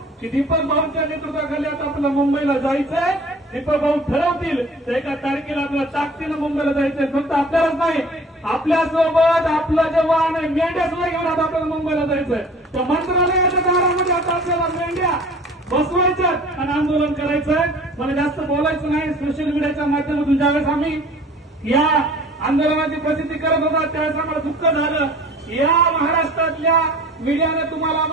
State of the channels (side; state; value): both; normal; correlation 0.47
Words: की दीपक भाऊंच्या नेतृत्वाखाली आता आपल्याला मुंबईला जायचंय. दीपक भाऊ ठरवतील तर एका तारखेला आपल्याला ताकदीनं मुंबईला जायचंय. फक्त आपल्यालाच नाही, आपल्यासोबत आपलं जे वाहन आहे मेंढ्या सुद्धा घेऊन आता आपल्याला मुंबईला जायचंय. तर मंत्रालयाच्या दारामध्ये आता आपल्याला मेंढ्या बसवायच्या आणि आंदोलन करायचंय. मला जास्त बोलायचं नाही. सोशल मीडियाच्या माध्यमातून ज्यावेळेस आम्ही या आंदोलनाची प्रसिद्धी करत होता त्यावेळेस आम्हाला दुःख झालं. या महाराष्ट्रातल्या मीडियाने तुम्हाला